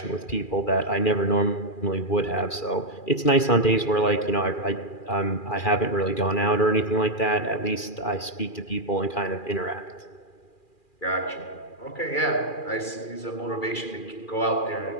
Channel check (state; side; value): late; right; 2.4 ms